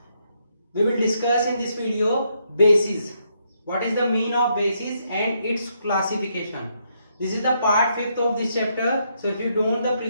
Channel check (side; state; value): both; inverted; correlation -0.76